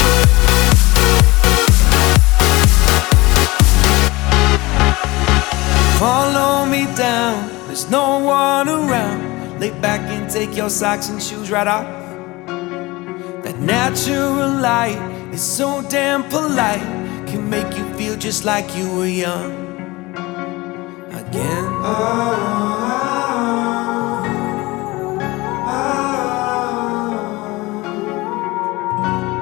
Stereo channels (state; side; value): quieter; right; 21.7 dB